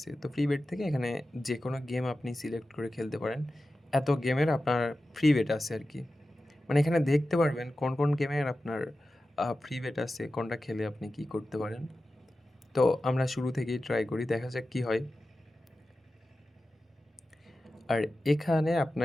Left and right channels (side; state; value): both; normal; correlation 0.93